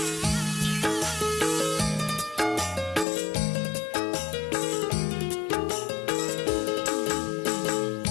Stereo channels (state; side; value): drops out; right; at 3.1 s